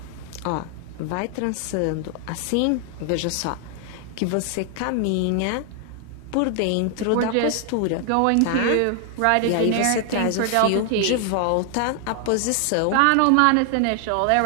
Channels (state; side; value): different; both; correlation 0.00